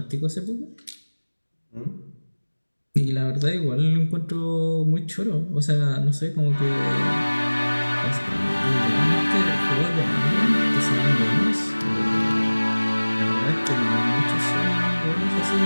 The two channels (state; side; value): inverted; both; correlation -1.00